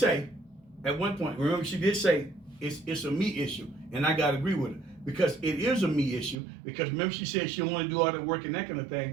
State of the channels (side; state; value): left; drops out; at 6.4 s